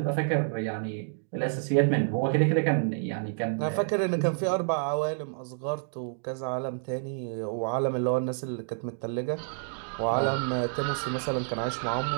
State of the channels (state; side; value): silent; left; digital silence